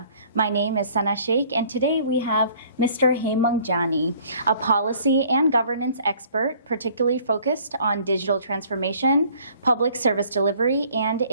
My name is Sana Sheikh, and today we have Mr. Hemang Jani, a policy and governance expert, particularly focused on digital transformation, public service delivery, and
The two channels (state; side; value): inverted; both; correlation -0.56